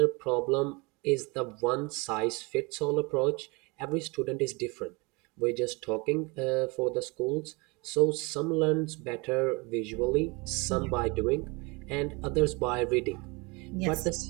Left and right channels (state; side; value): quieter; left; 27.5 dB